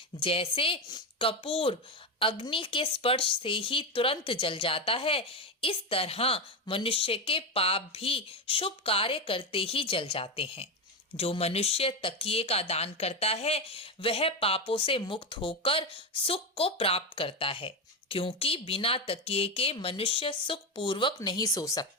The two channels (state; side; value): normal; both; correlation 0.13